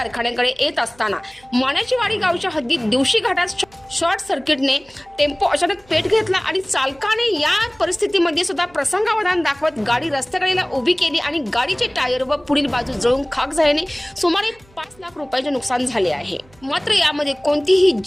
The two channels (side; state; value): right; noise; hum, 28 dB below the sound